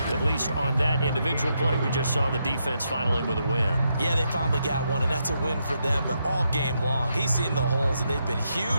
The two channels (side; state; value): both; inverted; correlation -0.81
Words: at least on that individual play, we just saw the defense finally with a win. Yeah, they finally got one, and that's a win for them, but all game long, he's seen the holes, and they've been